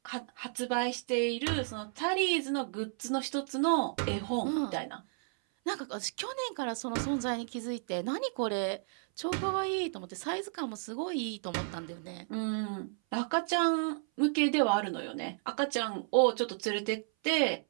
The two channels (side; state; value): left; silent; 56 dB below the other